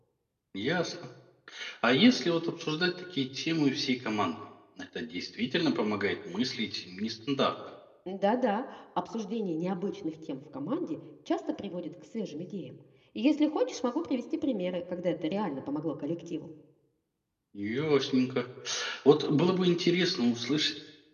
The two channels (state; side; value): identical; both; correlation 1.00